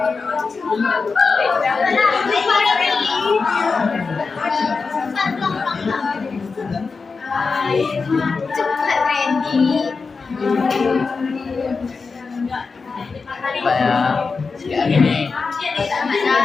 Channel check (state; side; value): quieter; right; 4.6 dB